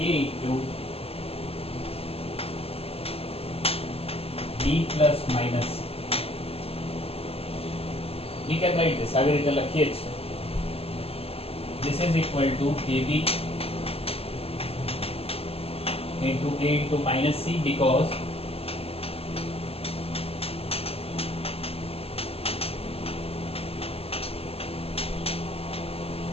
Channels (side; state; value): right; late; 0.28 ms